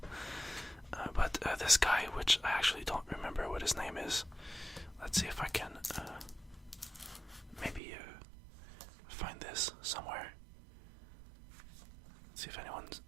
But this guy, which I actually don't remember what his name is. Let's see if I can maybe find this somewhere. Let's see if anyone's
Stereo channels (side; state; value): left; drops out; at 7.8 s